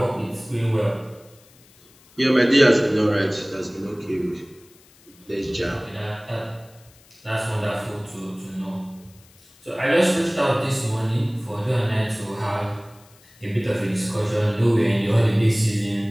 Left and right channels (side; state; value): left; noise; hiss, 28 dB below the sound